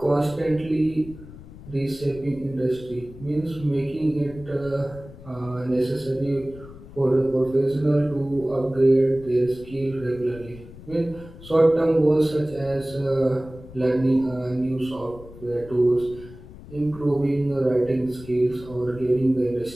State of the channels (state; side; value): noise; left; rumble, 18 dB below the sound